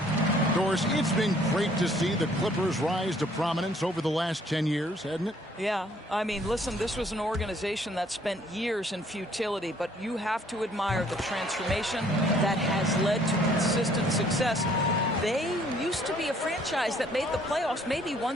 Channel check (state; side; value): normal; both; correlation 0.61